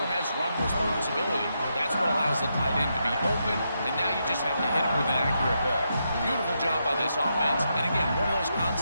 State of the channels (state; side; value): inverted; both; correlation -0.83